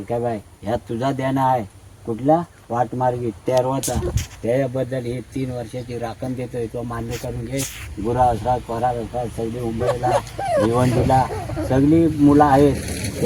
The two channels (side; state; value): both; identical; correlation 1.00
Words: ह्या तुझा देणं आहे. कुठला वाटमार्गी तेरवाचा, त्याच्याबद्दल ही 3 वर्षाची राखण देतोय. तो मान्य करून घे. गुरा असतात, परार असतात, सगळी मुंबईला भिवंडीला सगळी मुलं आहेत,